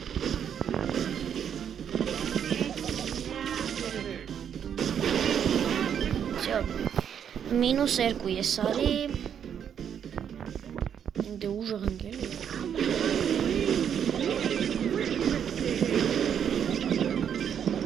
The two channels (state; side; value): quieter; left; 8.5 dB